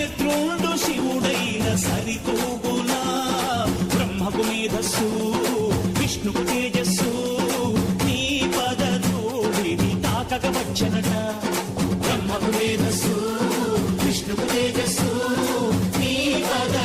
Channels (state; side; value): identical; both; correlation 1.00